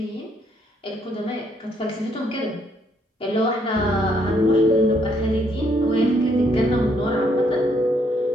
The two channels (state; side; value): normal; both; correlation 0.70